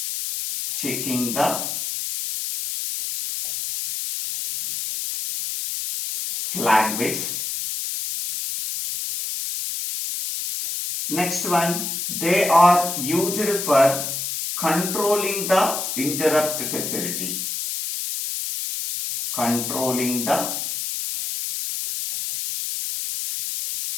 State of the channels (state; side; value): noise; left; hiss, 4 dB below the sound